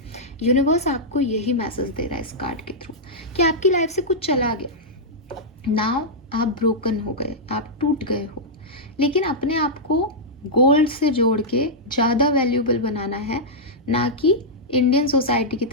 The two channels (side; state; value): both; normal; correlation -0.08